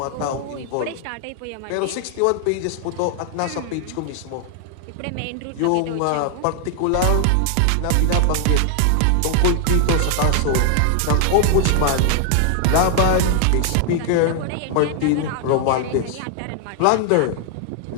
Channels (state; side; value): different; both; correlation 0.00